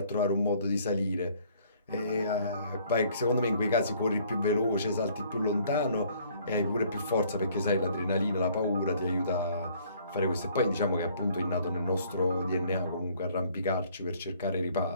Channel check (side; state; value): both; inverted; correlation -0.60